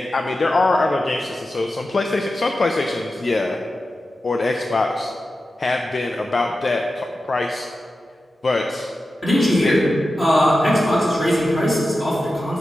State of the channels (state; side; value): normal; both; correlation 0.92